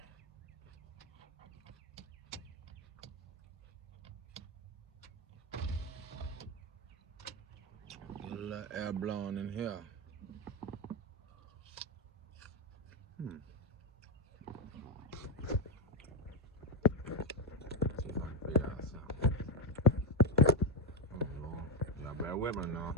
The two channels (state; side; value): normal; both; correlation 0.09